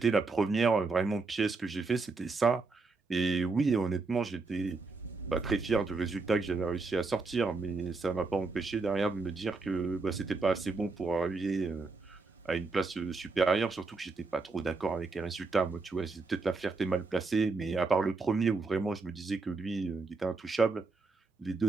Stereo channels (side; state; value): left; quieter; 4.0 dB